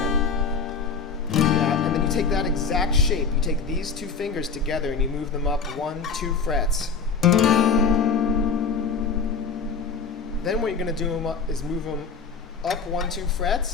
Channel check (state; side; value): quieter; right; 5.3 dB